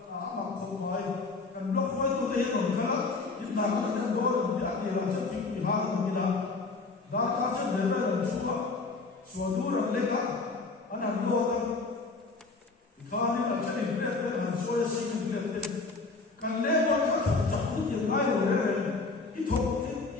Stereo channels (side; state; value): right; quieter; 3.9 dB